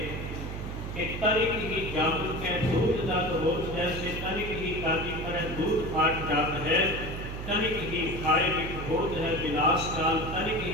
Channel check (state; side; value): noise; right; hum, 7 dB below the sound